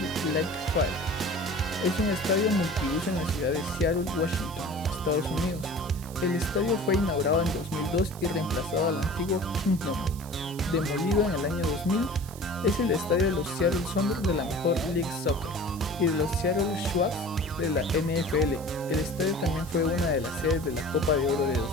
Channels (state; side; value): noise; right; hiss, 18 dB below the sound